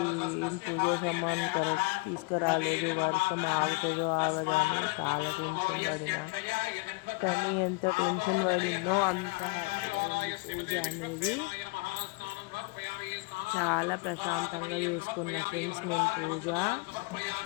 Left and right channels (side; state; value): right; quieter; 27.8 dB